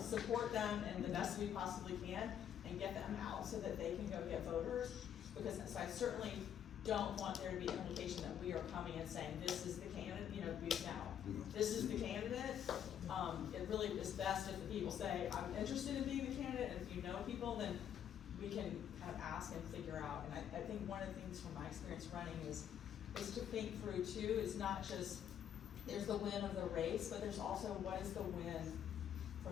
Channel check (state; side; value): quieter; right; 9.4 dB